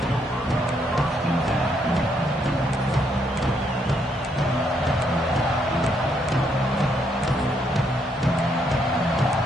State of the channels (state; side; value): normal; both; correlation 0.74